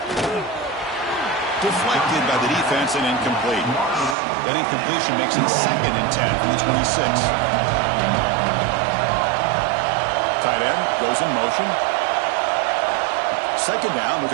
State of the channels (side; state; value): left; drops out; at 4.2 s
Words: Deflected by the defense and incomplete. That incompletion makes it 2nd and 10 from the 26. Tight end goes in motion. 2nd down, we're